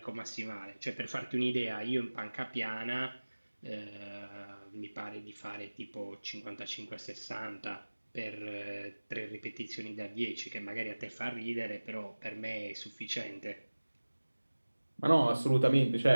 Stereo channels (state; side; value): inverted; both; correlation -1.00